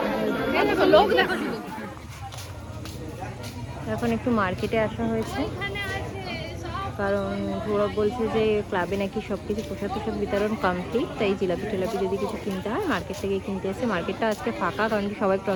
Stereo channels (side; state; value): both; identical; correlation 1.00